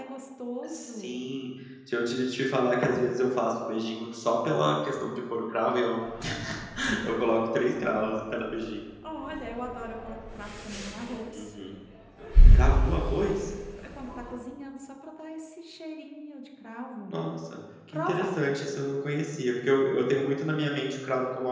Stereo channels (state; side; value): identical; both; correlation 1.00